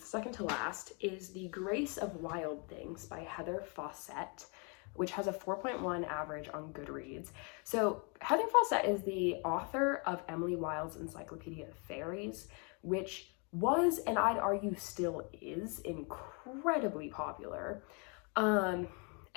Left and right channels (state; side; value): quieter; right; 34.7 dB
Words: second to last, is The Grace of Wild Things by Heather Fawcett, which has a 4.1 average on Goodreads. So Heather Fawcett is the author of Emily Wilde's Encyclopedia of Fairies, which was, and I'd argue still is, incredibly popular. And